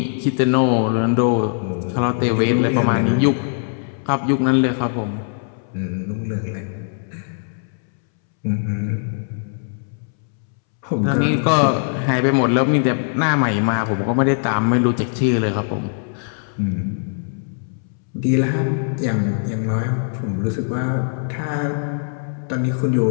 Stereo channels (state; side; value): silent; right; 65 dB below the other